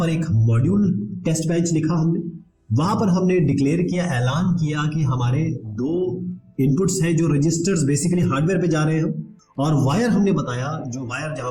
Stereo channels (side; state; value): both; identical; correlation 1.00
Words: एक मॉड्यूल टेस्ट बेंच लिखा हमने, वहां पर हमने डिक्लेयर किया, ऐलान किया कि हमारे दो इनपुट्स हैं जो रजिस्टर्स बेसिकली हार्डवेयर पे जा रहे हैं, और वायर हमने बताया, जो वायर जहां